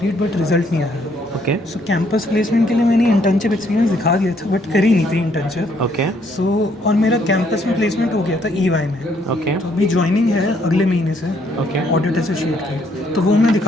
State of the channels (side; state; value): both; normal; correlation 0.69